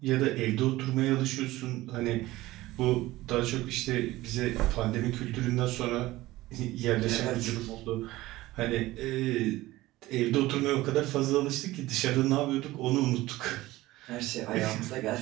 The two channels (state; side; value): quieter; left; 17.7 dB